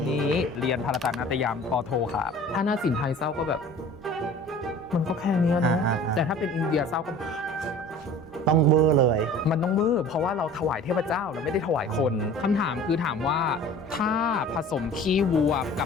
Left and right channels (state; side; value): normal; both; correlation 0.44